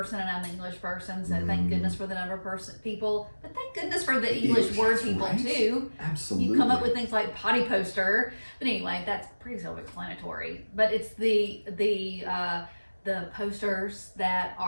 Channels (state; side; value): inverted; both; correlation -1.00